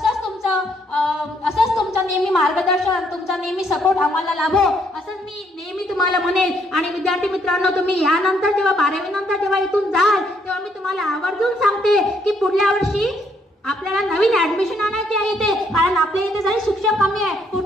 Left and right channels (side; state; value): both; normal; correlation 0.71